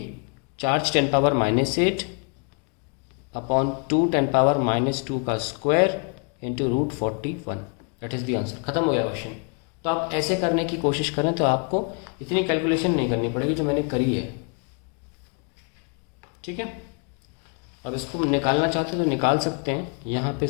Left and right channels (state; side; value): quieter; right; 37.6 dB